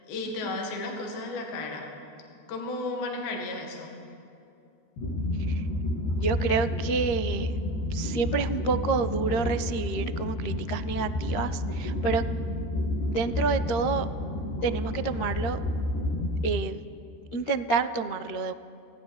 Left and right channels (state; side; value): late; right; 13 ms